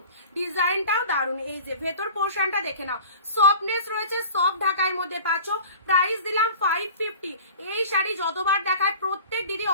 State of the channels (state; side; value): inverted; both; correlation -0.41